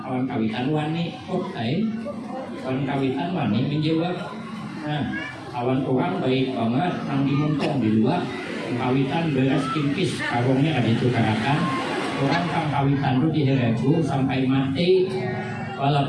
Kawan kawitan wani kawan kawitan wani menjawab. Nah, kawan orang baik banget nang dimuntong di luar. Kawitan beres kimpis karungnya ada itu karakan. Orang kang kawitan itu diheregu sampai mati.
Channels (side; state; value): both; identical; correlation 1.00